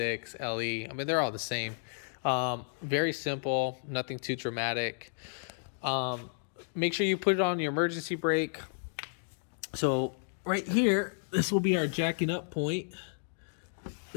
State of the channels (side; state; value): right; silent; digital silence